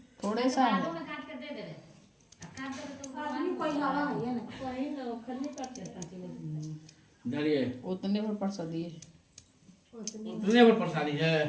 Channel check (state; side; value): identical; both; correlation 1.00